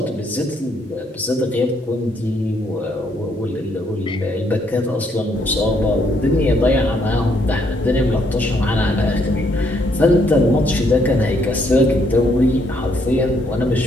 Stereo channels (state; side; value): normal; both; correlation 0.71